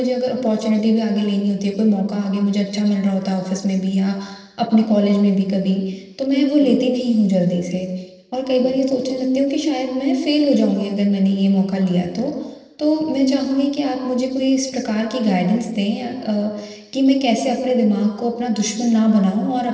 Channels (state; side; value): identical; both; correlation 1.00